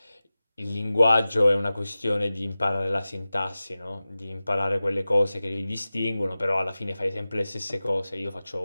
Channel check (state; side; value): inverted; both; correlation -0.96